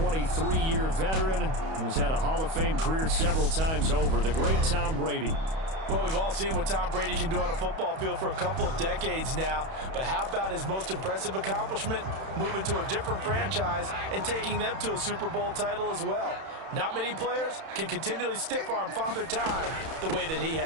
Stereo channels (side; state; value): left; late; 31 ms